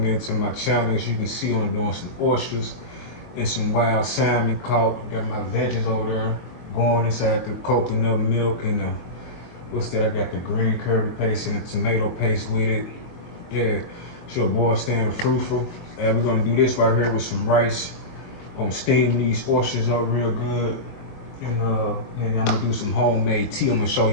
in to my channel. As you can see, I'm doing some oysters and some wild salmon caught. Got my veggies over there going inside the coconut milk and what's that? I got the green curry paste and the tomato paste with it. Yeah, it's your boy staying fruitful. And we're gonna do this right here with some rice. Gonna steam these oysters up real good. And I'm gonna do some homemade tea. I'm gonna show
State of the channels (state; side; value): late; right; 22 ms